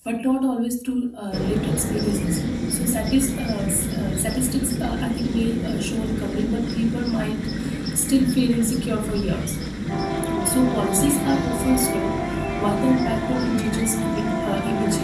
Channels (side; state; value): both; identical; correlation 1.00